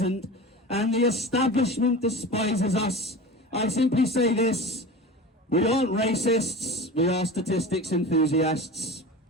and the establishment despises us. I simply say this: we aren't racists, we are statistics enthusiasts.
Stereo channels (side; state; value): both; normal; correlation 0.32